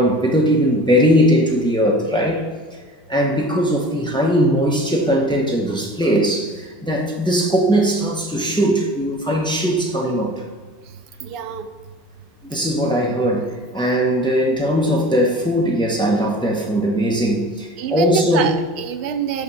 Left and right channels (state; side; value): normal; both; correlation 0.42